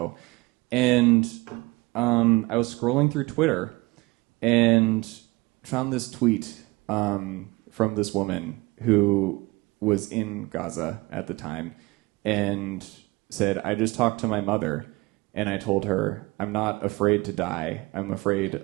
And I was scrolling through Twitter and found this tweet from this woman who was in Gaza at the time and said, "I just talked to my mother and I told her, I'm not afraid to die. I'm afraid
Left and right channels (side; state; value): left; quieter; 22.9 dB